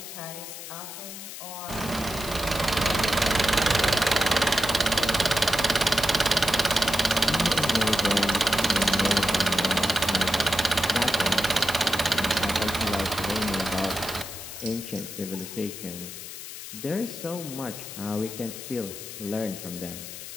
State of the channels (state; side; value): noise; left; hiss, 11 dB below the sound